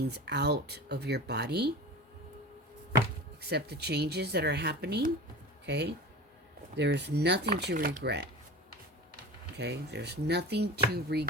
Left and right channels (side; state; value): both; normal; correlation 0.33